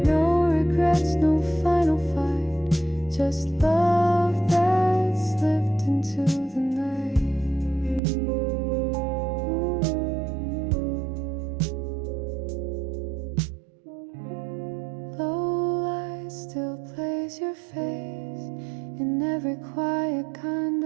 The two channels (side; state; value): left; drops out; at 8.0 s